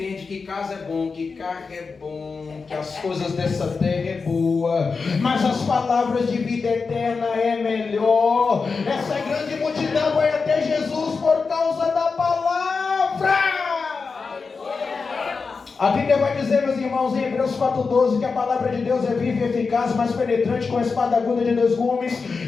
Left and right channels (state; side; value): quieter; right; 4.7 dB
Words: que casa é bom, que carro é bom, que as coisas dessa terra é boa, mas as palavras de vida eterna é melhor. Essa grande multidão vai até Jesus por causa da palavra. A Bíblia vai dizer, meus irmãos, em Hebreus 4,12, que a palavra de Deus é viva e eficaz, mais penetrante com a espada aguda de 2 gumes.